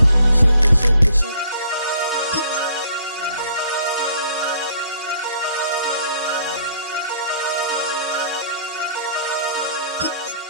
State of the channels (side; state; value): both; inverted; correlation -0.60